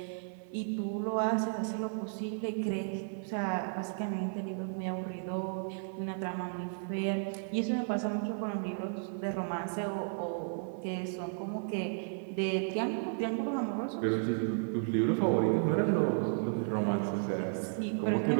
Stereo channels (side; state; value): left; silent; 55 dB below the other